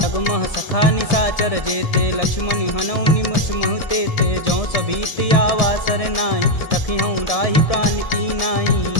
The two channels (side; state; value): right; late; 1.7 ms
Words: जगमह सखा निशाचर जेते, लक्ष्मण हनौ निमस महते ते। जौ सभीत आवा सरनाई, तखिहूँ राहि प्राण की